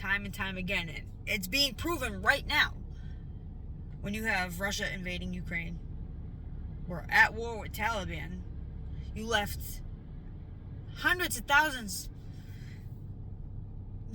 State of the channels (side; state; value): both; identical; correlation 1.00